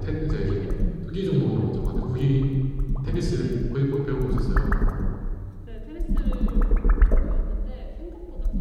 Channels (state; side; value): identical; both; correlation 1.00